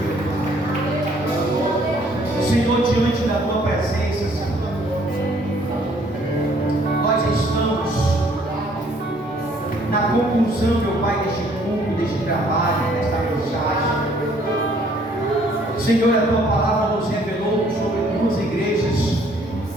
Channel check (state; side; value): normal; both; correlation 0.62